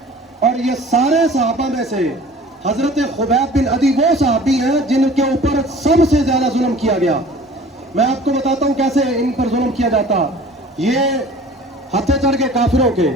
اور یہ سارے صحابہ میں سے حضرت خبیب بن عدی وہ صحابی ہیں جن کے اوپر سب سے زیادہ ظلم کیا گیا. میں آپ کو بتاتا ہوں کیسے ان پر ظلم کیا جاتا. یہ ہتھے چڑھ کے کافروں کے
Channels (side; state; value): both; normal; correlation 0.46